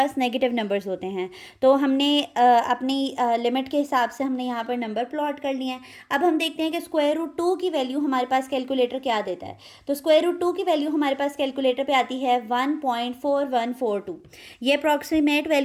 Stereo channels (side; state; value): both; identical; correlation 1.00